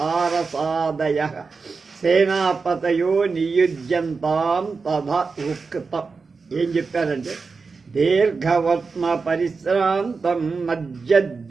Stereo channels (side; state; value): left; quieter; 4.6 dB